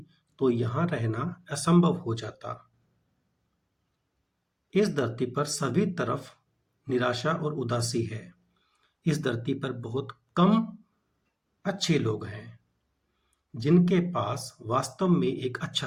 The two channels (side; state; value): both; identical; correlation 1.00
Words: तो यहां रहना असंभव हो जाता। इस धरती पर सभी तरफ निराशा और उदासी है। इस धरती पर बहुत कम अच्छे लोग हैं जिनके पास वास्तव में एक